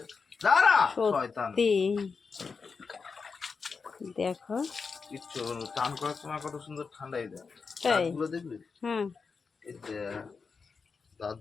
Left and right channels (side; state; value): right; quieter; 5.1 dB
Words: দাঁড়া শয়তান। সত্যি। দেখো কিচ্ছু হবে না, চান করার সময় কত সুন্দর ঠান্ডাই দেয়। তাই? দাঁতগুলো দেখবি? হ্যাঁ এই দেখ, দাঁত